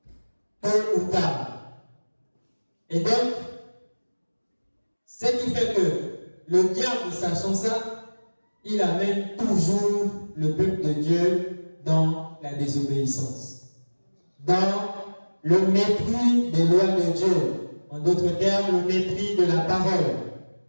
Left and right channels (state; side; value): inverted; both; correlation -1.00